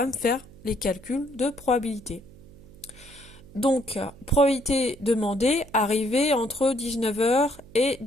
me faire les calculs de probabilité. Donc, probabilité demandée, arrivée entre 19h et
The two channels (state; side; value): noise; right; hum, 21 dB below the sound